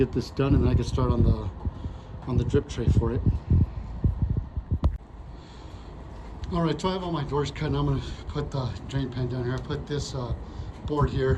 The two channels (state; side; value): identical; both; correlation 1.00